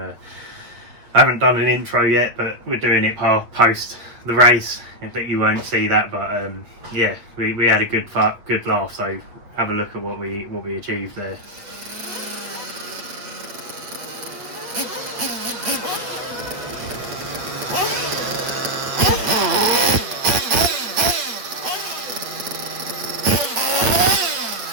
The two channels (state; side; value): late; left; 8.4 ms